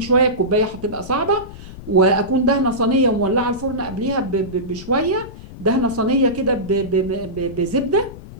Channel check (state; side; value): noise; left; rumble, 15 dB below the sound